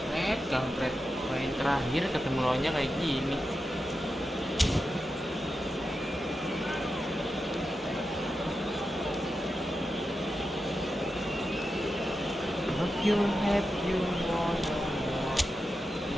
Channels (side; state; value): both; normal; correlation 0.89